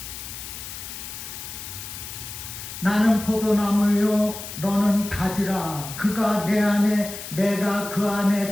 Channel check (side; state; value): left; noise; hiss, 10 dB below the sound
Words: 나는 포도나무요 너는 가지라 그가 내 안에 내가 그 안에